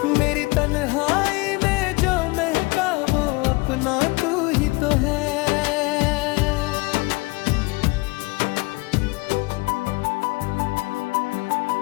मेरी तन्हाई में जो महका वो अपना तू ही तो है।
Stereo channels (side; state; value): right; quieter; 24.7 dB